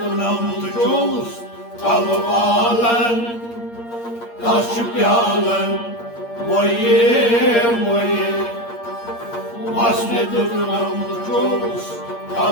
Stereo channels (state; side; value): late; right; 8.6 ms